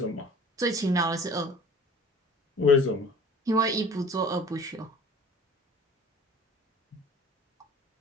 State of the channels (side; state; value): both; normal; correlation 0.45